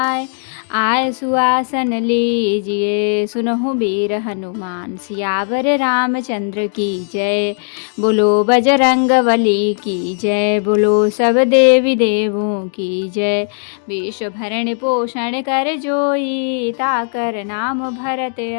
आय सुआसन लीजिए, सुनहु वीर हनुमान सियावर रामचंद्र की जय। बोलो बजरंग बली की जय, बोलो सब देवी देवों की जय। विश्व भरण पोषण कर जोई, ताकर नाम भरत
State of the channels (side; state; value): right; silent; 63 dB below the other